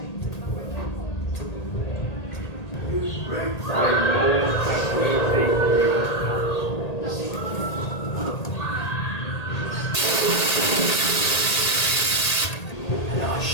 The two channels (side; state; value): right; late; 1.8 ms